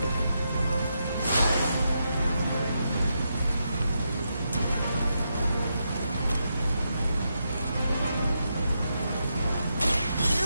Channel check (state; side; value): inverted; both; correlation -0.83